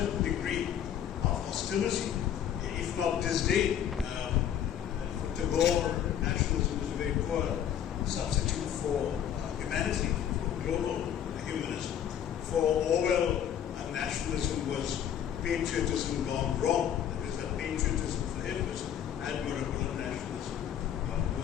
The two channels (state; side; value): quieter; right; 9.7 dB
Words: degree of hostility, if not disdain. For Tagore, nationalism was a very poor substitute for humanity, for global humanism. For Orwell, nationalism was patriotism gone wrong. That is, that patriotism for him was admirable and nationalism